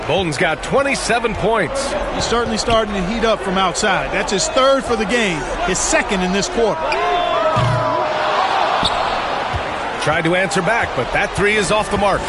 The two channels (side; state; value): both; identical; correlation 1.00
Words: Bolden's got 27 points. He's certainly starting to heat up from outside. That's his 3rd for the game, his 2nd in this quarter. Tried to answer back, but that 3 is off the mark.